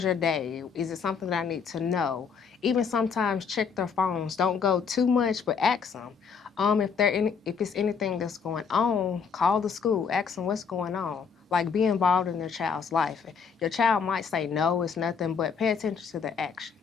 your day? Is it something that I need to know? Even sometimes check their phones. Don't go too much, but ask them. If it's anything that's going on, call the school, ask them what's going on. Like, be involved in their child's life. Your child might say no, it's nothing, but pay attention to their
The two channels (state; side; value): quieter; right; 6.1 dB